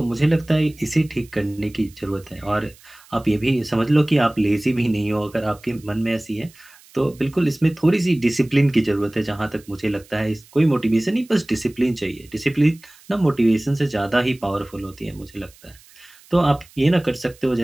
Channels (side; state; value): right; noise; hiss, 26 dB below the sound